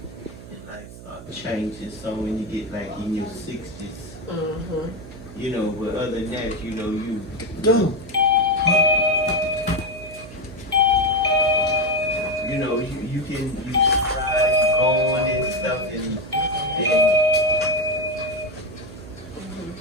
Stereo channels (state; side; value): noise; right; hum, 15 dB below the sound